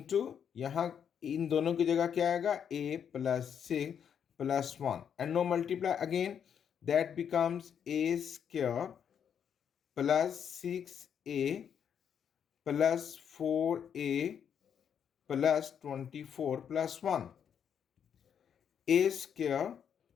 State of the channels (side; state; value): right; quieter; 8.1 dB